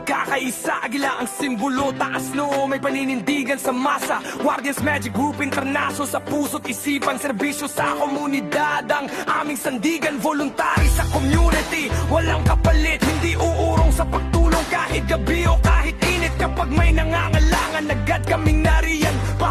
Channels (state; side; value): identical; both; correlation 1.00